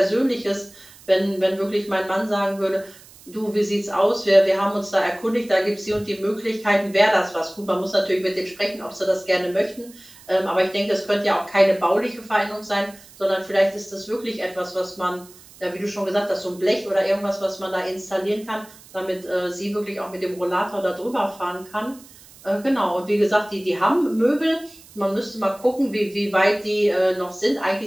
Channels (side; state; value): right; noise; hiss, 22 dB below the sound